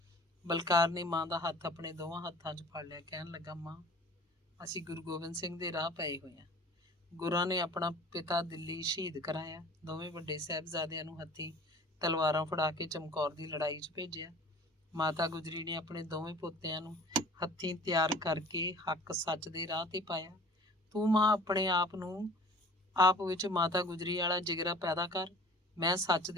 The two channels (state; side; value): normal; both; correlation 0.46